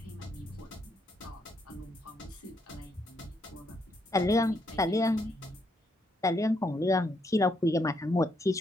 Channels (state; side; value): normal; both; correlation 0.75